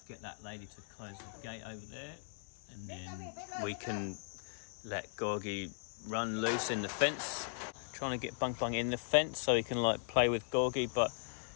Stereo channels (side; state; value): right; silent; 52 dB below the other